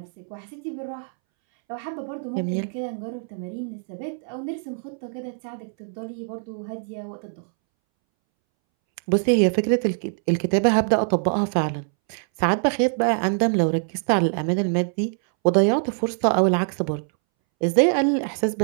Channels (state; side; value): silent; left; 63 dB below the other